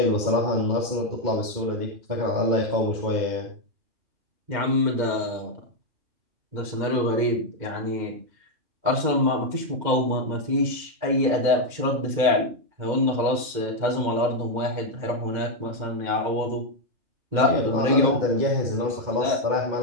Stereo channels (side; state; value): left; late; 2.2 ms